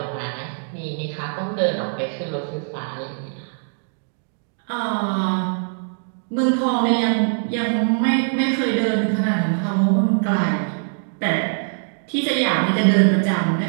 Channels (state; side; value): silent; left; digital silence